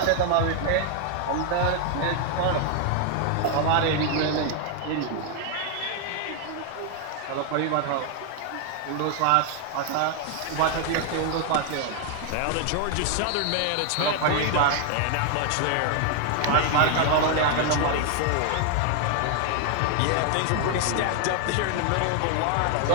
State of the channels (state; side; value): different; both; correlation 0.00